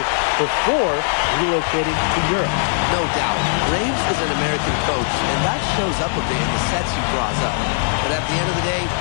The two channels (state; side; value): silent; right; 66 dB below the other